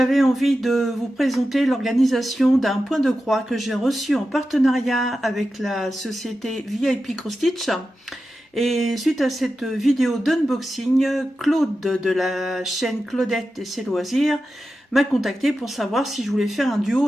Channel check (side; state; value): both; normal; correlation 0.92